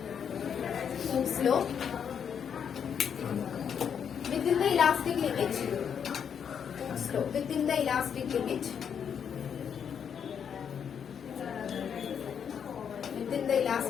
law within the elastic limit. Within the elastic limit within the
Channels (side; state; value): right; quieter; 7.7 dB